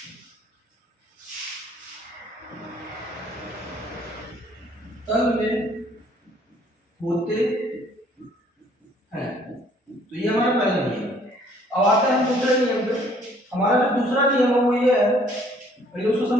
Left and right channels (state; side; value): normal; both; correlation 0.60